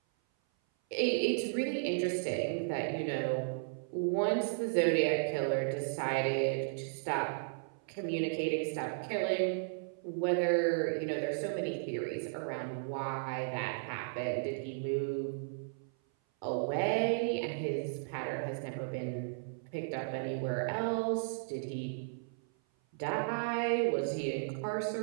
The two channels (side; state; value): left; silent; 55 dB below the other